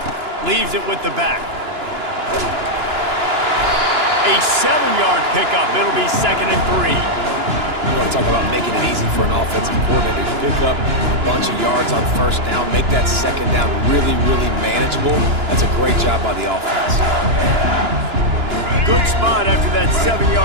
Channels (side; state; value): left; late; 2.9 ms